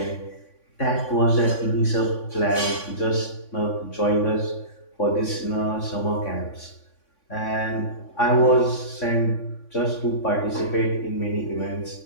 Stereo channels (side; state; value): right; late; 3.5 ms